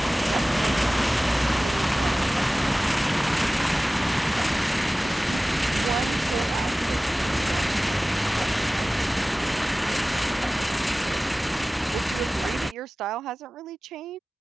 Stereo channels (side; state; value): both; normal; correlation 0.97